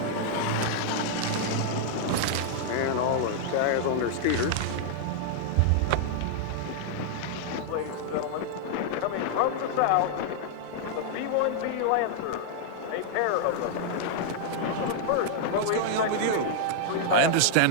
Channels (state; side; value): different; both; correlation -0.01